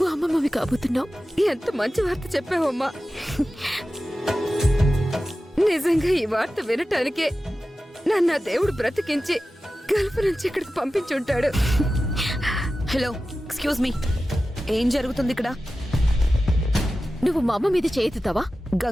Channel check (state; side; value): normal; both; correlation 0.94